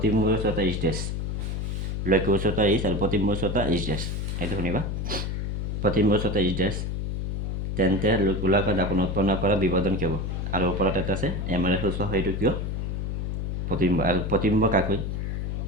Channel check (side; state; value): left; noise; hum, 2 dB below the sound